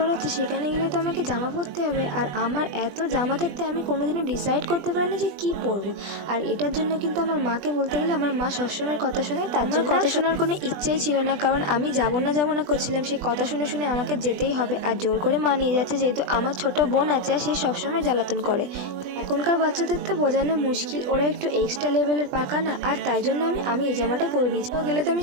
হচ্ছে, সেখানে গেলে তো আমাকে জামা পরতে হবে, আর আমার এত জামা থাকতে আমি কোনোদিনও ডিসাইড করতে পারি না যে কী পরবো। আর এটার জন্য কিন্তু আমার মাকে বলতে গেলে, আমার মা সবসময় কথা শোনে, তার জন্য কথা শোনার কোনো ইচ্ছেই ছিল না, কারণ আমি যাবো না করছিলাম, সে কথা শুনে শুনে আমাকে যেতেই হবে। আর জোর করে মা নিয়ে যাচ্ছে, যেহেতু আমার ছোট বোন আছে আর সে সবসময় জ্বালাতন করে। এখনকার বাচ্চাদের তো বোঝানো মুশকিল, ওরা একটু এক্সট্রা লেভেলের পাকা না, আর তাই জন্য আমি এই জামাটা পরে নিয়েছি। তো গেলে তো আমি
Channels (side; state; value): left; late; 20 ms